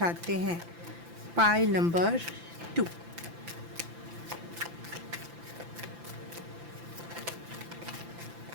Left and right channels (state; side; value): late; left; 5.9 ms